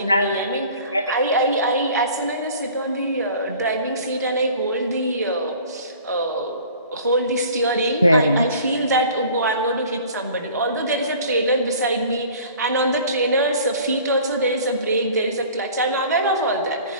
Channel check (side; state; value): both; inverted; correlation -0.47